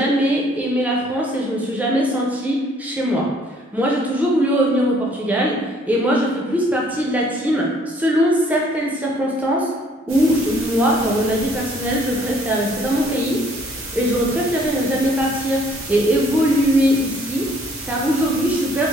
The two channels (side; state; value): both; normal; correlation 0.61